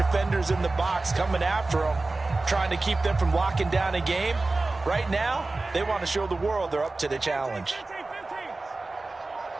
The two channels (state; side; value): quieter; left; 3.3 dB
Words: in the box coming after them, trying to keep them from locking down a game. Right now, they want to show the world they're up to the challenge.